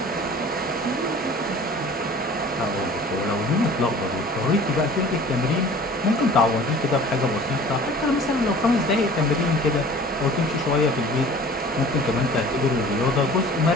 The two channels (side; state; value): both; normal; correlation 0.46